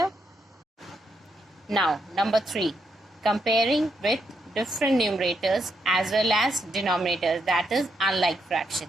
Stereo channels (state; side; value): normal; both; correlation 0.80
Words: Now, number 3, comparing with different numerators as well as denominators, that is unlike fraction.